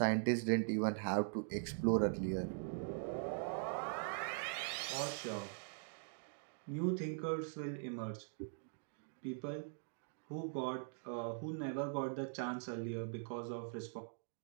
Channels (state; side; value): silent; left; digital silence